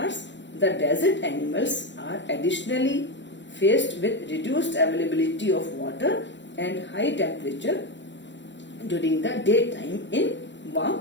The desert animals are additionally faced with reduced availability of water and high temperature during the daytime in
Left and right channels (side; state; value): right; late; 0.53 ms